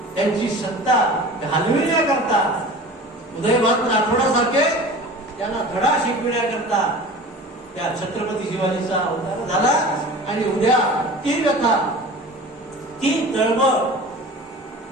त्यांची सत्ता घालविण्याकरता उदयभान राठोडासारखे त्यांना धडा शिकविण्याकरता त्या छत्रपती शिवाजीचा अवतार झाला. आणि उद्या ती व्यथा, ती तळमळ,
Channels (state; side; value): normal; both; correlation 0.38